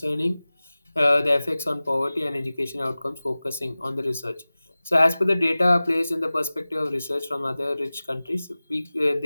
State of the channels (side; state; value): both; inverted; correlation -0.98